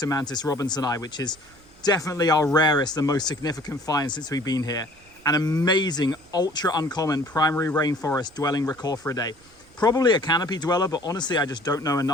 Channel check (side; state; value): right; noise; rumble, 28 dB below the sound